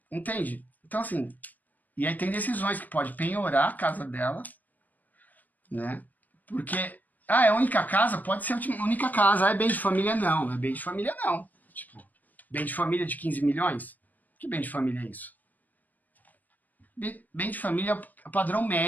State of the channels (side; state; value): right; late; 0.082 ms